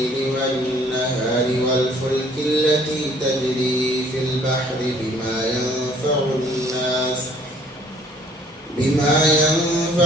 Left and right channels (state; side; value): normal; both; correlation 0.58